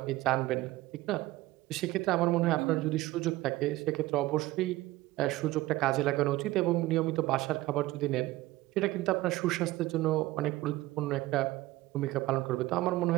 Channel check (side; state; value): left; quieter; 18.0 dB